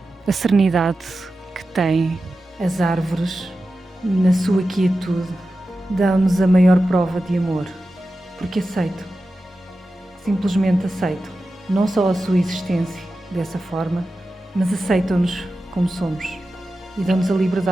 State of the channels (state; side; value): normal; both; correlation 0.93